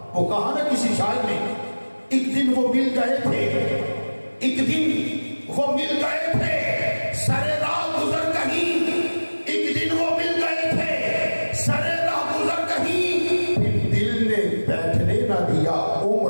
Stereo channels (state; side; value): inverted; both; correlation -1.00